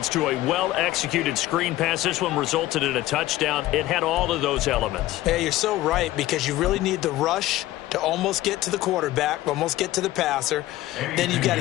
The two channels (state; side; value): quieter; right; 15.9 dB